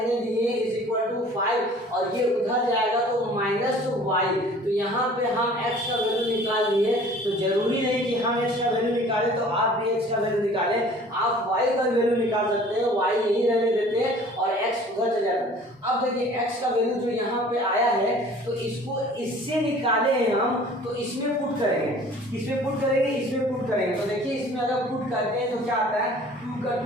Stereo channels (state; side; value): normal; both; correlation 0.49